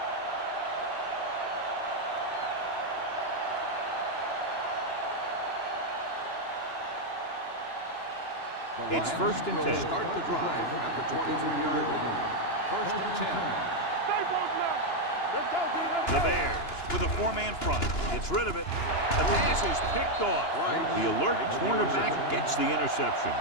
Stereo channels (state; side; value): late; right; 2.9 ms